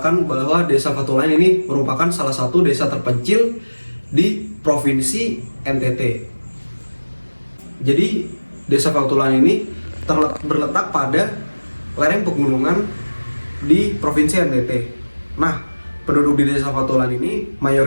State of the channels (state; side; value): inverted; both; correlation -1.00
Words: bahwa Desa Fatulan ini merupakan salah satu desa terpencil di Provinsi NTT. Jadi, Desa Fatulan ini berletak pada lereng pegunungan di Provinsi NTT. Nah, penduduk di Desa Fatulan ini